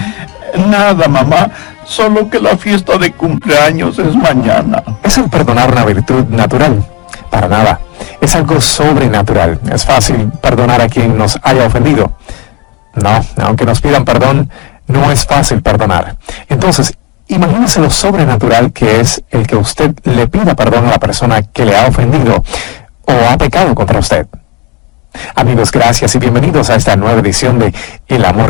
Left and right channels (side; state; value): right; quieter; 26.7 dB